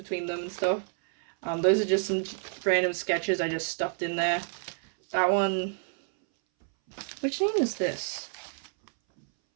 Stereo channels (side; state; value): left; silent; 59 dB below the other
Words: them and stuff. Those are just some random sketches I just stuffed in there. That one, which name is this?